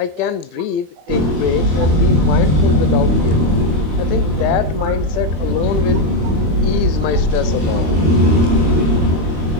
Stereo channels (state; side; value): late; left; 25 ms